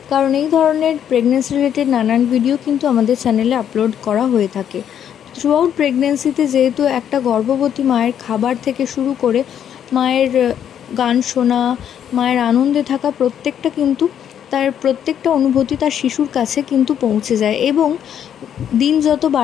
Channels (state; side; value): quieter; right; 9.3 dB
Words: কারণ এই ধরনের প্রেগনেন্সি রিলেটেড নানান ভিডিও কিন্তু আমাদের চ্যানেলে আপলোড করা হয়ে থাকে। থ্রুআউট প্রেগনেন্সিতে যেহেতু একটা গর্ভবতী মায়ের খাবার থেকে শুরু করে মায়ের গান শোনা, মায়ের আনন্দে থাকা প্রত্যেকটা কিন্তু তার প্রত্যেকটা অনুভূতি তার শিশুর কাছে কিন্তু পৌঁছে যায়। এবং দিন যত